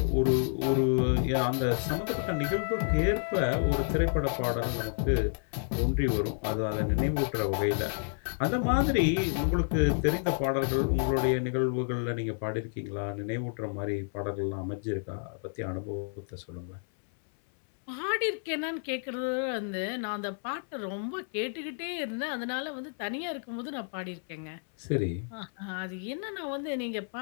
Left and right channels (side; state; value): right; silent; 58 dB below the other